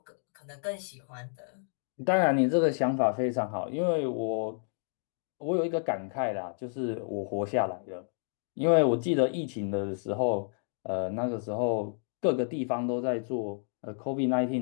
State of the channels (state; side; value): silent; right; digital silence